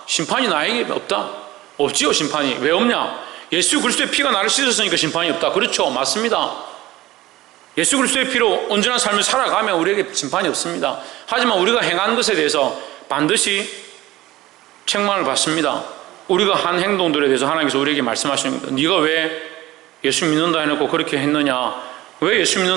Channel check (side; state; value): left; quieter; 16.9 dB